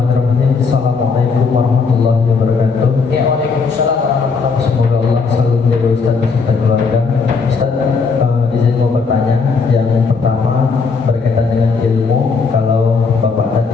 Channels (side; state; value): right; quieter; 4.9 dB